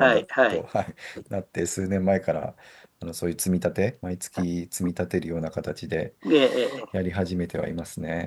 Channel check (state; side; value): identical; both; correlation 1.00